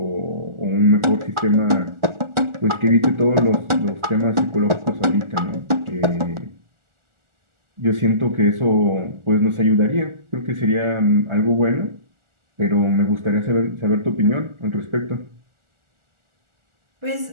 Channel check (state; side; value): late; left; 1.4 ms